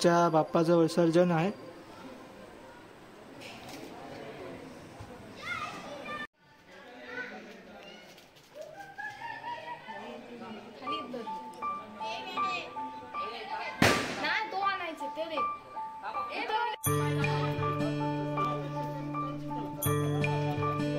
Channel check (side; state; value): both; identical; correlation 1.00